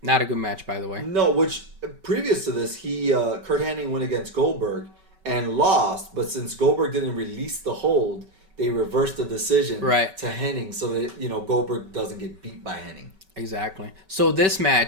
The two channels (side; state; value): left; late; 5.2 ms